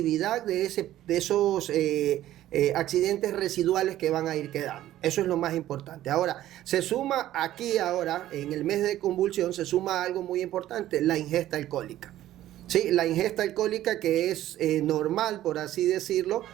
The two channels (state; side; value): quieter; left; 13.6 dB